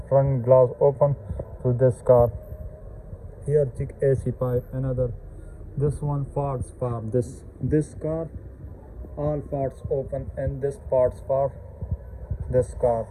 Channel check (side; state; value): both; identical; correlation 1.00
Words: front glass open to this car. Here check AC pipe, another this one parts for this car, all parts open, and this parts for this car.